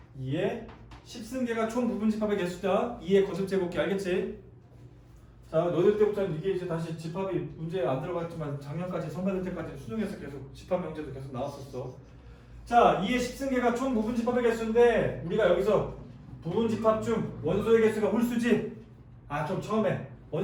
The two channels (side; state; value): both; identical; correlation 1.00